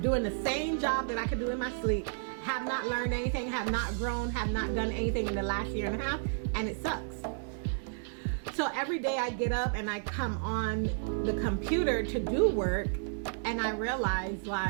doing the same job that I could do in my sleep, have not learned anything, have not grown, have not done anything in the last year and a half, and it sucks. So every day I get up and I come on the computer to do work, and I realize,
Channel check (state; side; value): silent; left; digital silence